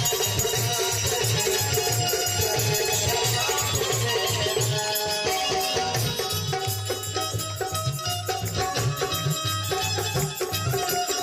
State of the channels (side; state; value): both; identical; correlation 1.00